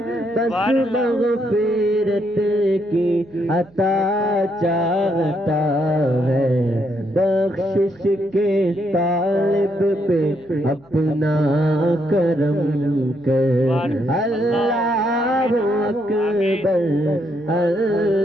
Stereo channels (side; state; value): right; noise; hum, 29 dB below the sound